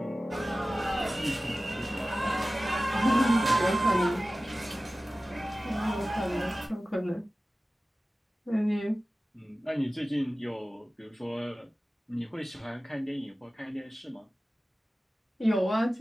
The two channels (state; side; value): normal; both; correlation 0.96